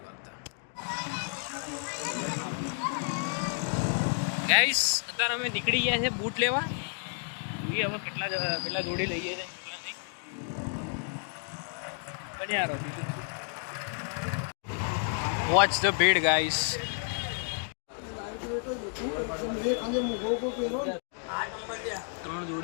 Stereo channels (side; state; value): right; silent; 57 dB below the other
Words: ગાઈસ અત્યારે અમે નીકળી ગયા છે બૂટ લેવા. જોઈએ હવે કેટલા જોડી લઈએ છે કેટલા નહીં. બન્યા રહો. બીજું વોચ ધ ભીડ ગાઈસ. 3